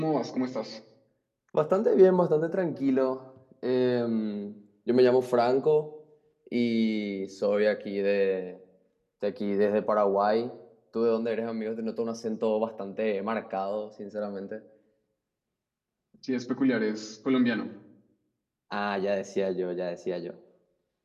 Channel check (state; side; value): identical; both; correlation 1.00